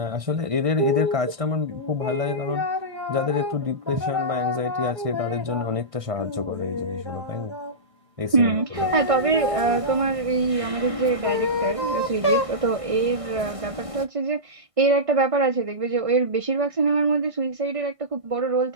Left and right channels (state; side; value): late; left; 1.6 ms